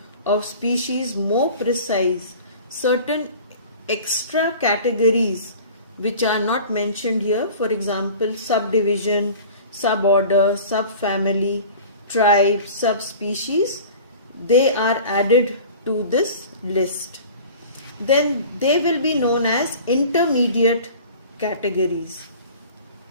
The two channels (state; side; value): inverted; both; correlation -0.42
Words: of species more precise, certain extra categories which are not mentioned here, for example subdivision, suborder, subfamily, tribe, subspecies, they are added to this list. Then they will be known as intermediate categories.